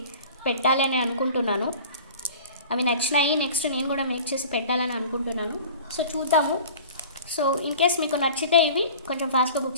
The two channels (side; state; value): both; inverted; correlation -0.42